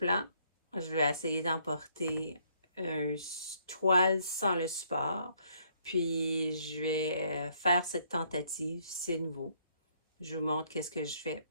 je vais essayer d'emporter une toile sans le support, puis je vais faire cette tentative, c'est nouveau. Je vous montre qu'est-ce que je fais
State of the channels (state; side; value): inverted; both; correlation -0.67